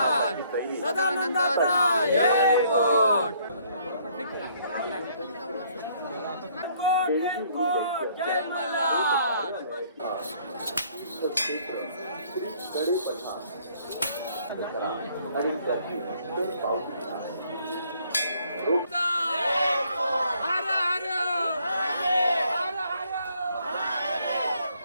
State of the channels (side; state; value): both; inverted; correlation -0.64